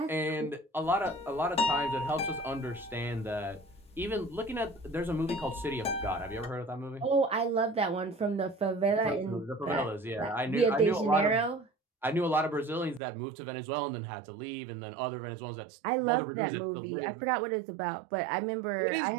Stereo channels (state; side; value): drops out; left; at 13.0 s